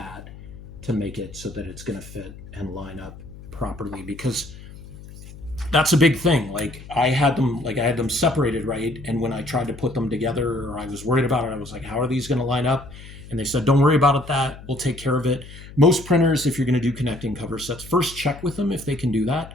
to make it so that it's going to fit and line up properly, because that's a big thing. Like I had them separated, right? And when I tried to put them together, or I was worried about it, I was like, how are these going to line up? And they said, don't worry about that. We'll take care of it. Most printers, if you're going to do connecting cover sets, first check with them if they can do that.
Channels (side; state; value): left; noise; hum, 16 dB below the sound